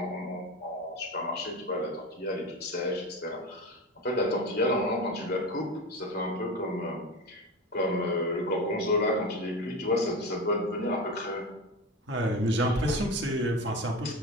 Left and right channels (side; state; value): both; normal; correlation 0.25